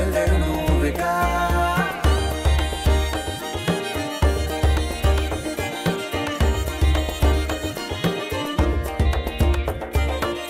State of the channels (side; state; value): both; identical; correlation 1.00